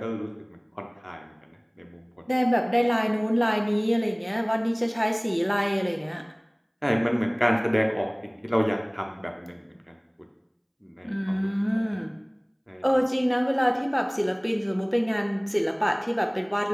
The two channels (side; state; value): both; identical; correlation 1.00